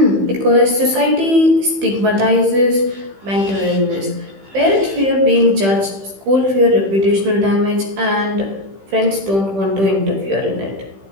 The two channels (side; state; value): left; late; 15 ms